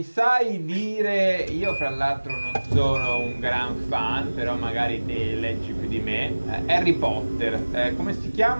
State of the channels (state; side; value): inverted; both; correlation -1.00